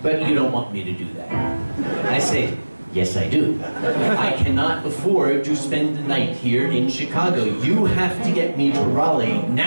but you don't want me to do that. I say, yes, I do. I cannot afford to spend the night here in Chicago. You have to get me to Raleigh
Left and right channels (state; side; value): inverted; both; correlation -1.00